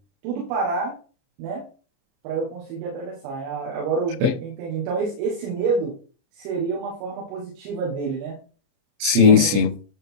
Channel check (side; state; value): left; late; 30 ms